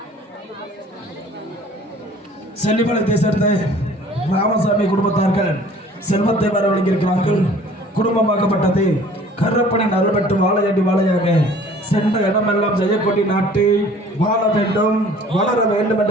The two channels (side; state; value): both; normal; correlation 0.51